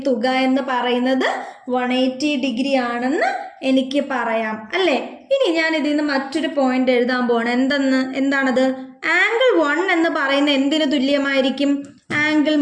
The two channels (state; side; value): identical; both; correlation 1.00